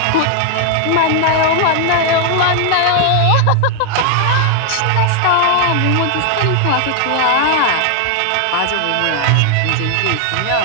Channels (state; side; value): different; both; correlation 0.00